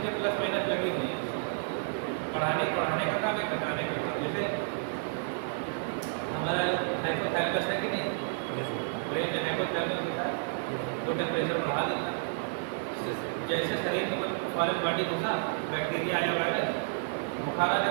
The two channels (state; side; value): silent; left; 57 dB below the other